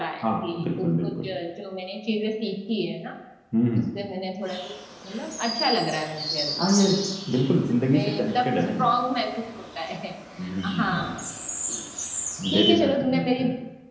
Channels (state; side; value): identical; both; correlation 1.00